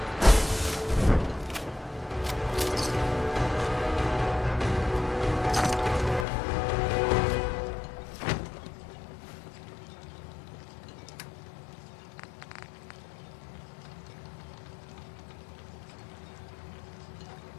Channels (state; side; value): drops out; right; at 6.2 s